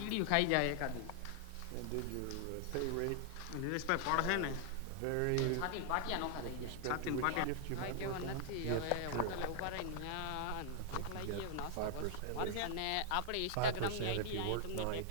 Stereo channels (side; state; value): both; different; correlation 0.00